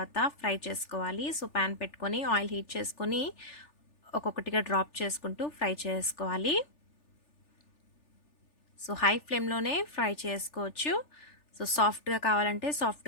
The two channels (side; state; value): right; late; 3.4 ms